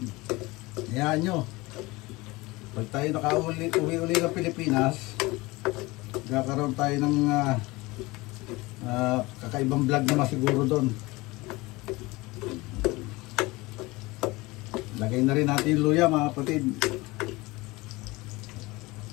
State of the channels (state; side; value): quieter; right; 22.0 dB